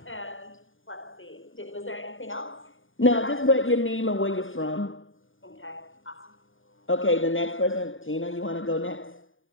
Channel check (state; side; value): late; right; 0.58 ms